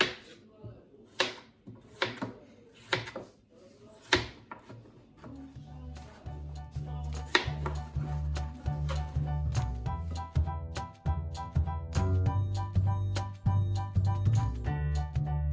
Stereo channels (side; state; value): both; identical; correlation 1.00